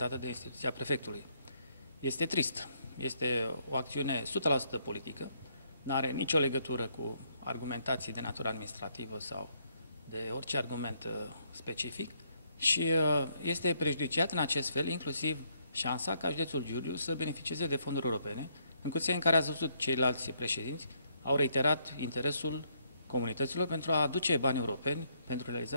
de instituția prefectului. Este trist. Este o acțiune 100% politică, nu are nicio legătură cu argumentații de natură administrativă sau de orice argument specific și este prejudiciat în acest fel inclusiv șansa ca județul Giurgiu să beneficieze de fonduri europene, în condiții în care ați văzut ceilalți președinți au reiterat interesul comunităților pentru a aduce bani europeni pentru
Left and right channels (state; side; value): inverted; both; correlation -0.72